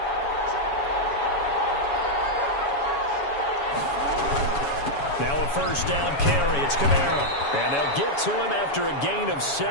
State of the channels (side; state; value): right; late; 7.1 ms